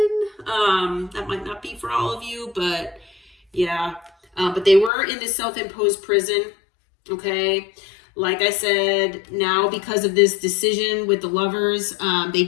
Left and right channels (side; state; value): right; drops out; at 4.9 s